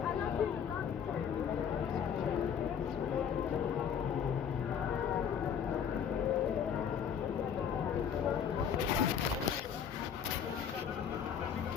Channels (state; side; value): quieter; right; 7.8 dB